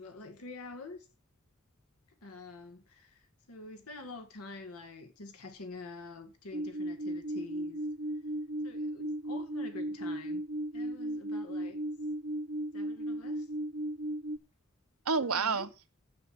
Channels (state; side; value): normal; both; correlation 0.31